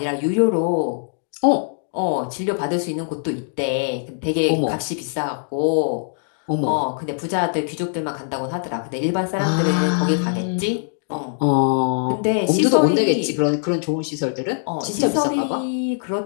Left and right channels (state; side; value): silent; right; digital silence